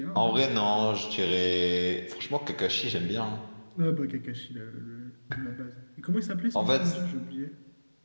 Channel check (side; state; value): both; inverted; correlation -1.00